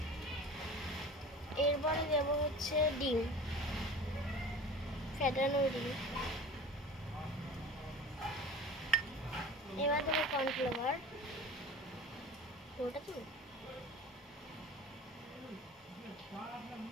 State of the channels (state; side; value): normal; both; correlation 0.38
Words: এরপরে দেব হচ্ছে ডিম ফেটানো ডিম, এবার দেবো কর্নফ্লাওয়ার, ওটা তো